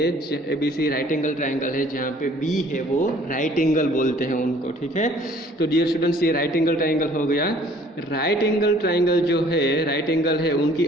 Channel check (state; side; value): normal; both; correlation 0.55